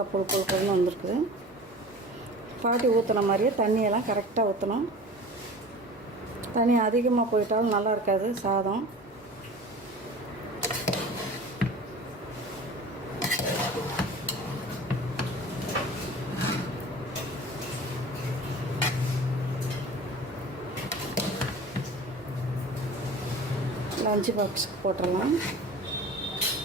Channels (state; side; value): normal; both; correlation 0.40